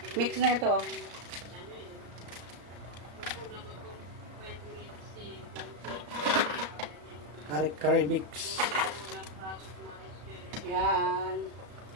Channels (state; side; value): late; left; 34 ms